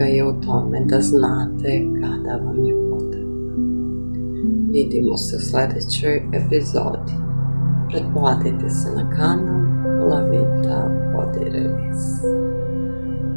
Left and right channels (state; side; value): inverted; both; correlation -1.00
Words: je u tome da znate kada vam je potrebno. Vidimo se u sledećoj epizodi. Pretplatite se na kanal Lavita Body Release.